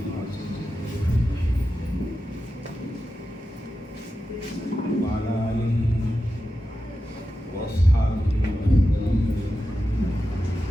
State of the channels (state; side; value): normal; both; correlation 0.91